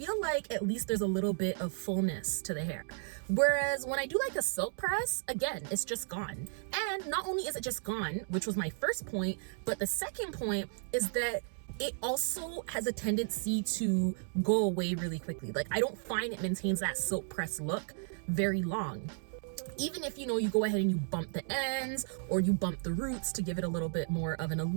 like at least there's a little bit of fullness to the hair. Whereas when I do like a silk press, again, it's just gone. And not only is it just gone, which was my first point, but the second point is that it also has a tendency to go away really quickly. Like, I don't find it maintains that silk press look very long. Even if, you know, you go ahead and you bump the ends or you bump the roots to give it a little bit more of an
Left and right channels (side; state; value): left; silent; 55 dB below the other